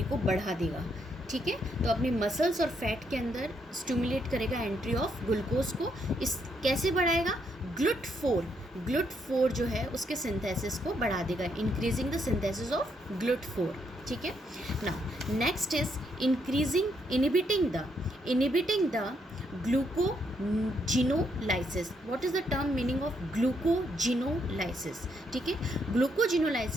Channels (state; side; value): normal; both; correlation 0.76